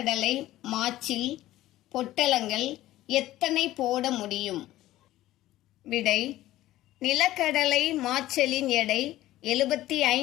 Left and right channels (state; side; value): quieter; right; 15.3 dB